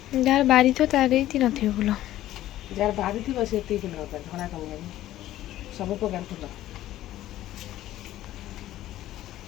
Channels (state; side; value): quieter; right; 14.0 dB